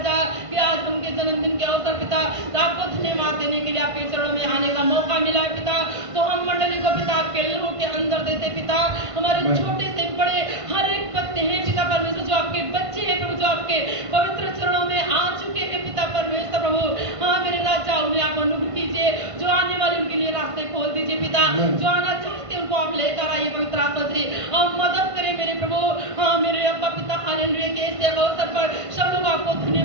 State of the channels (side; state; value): left; late; 1.5 ms